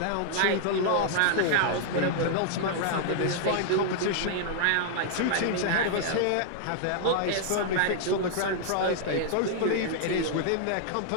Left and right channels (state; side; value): different; both; correlation -0.01